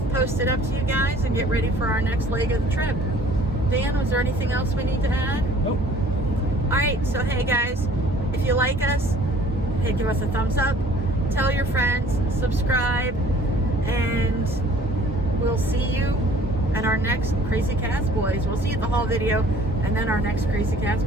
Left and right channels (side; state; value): both; normal; correlation 0.53